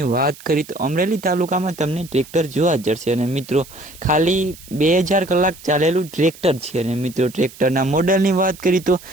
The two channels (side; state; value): right; noise; hiss, 20 dB below the sound